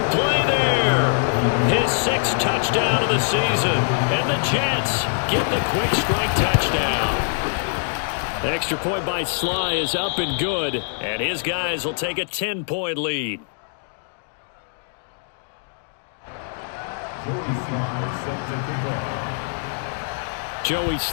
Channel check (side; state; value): right; silent; digital silence